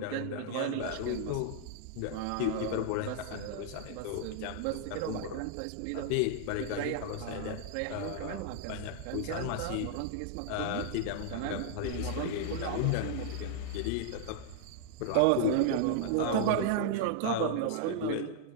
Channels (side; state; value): both; different; correlation -0.01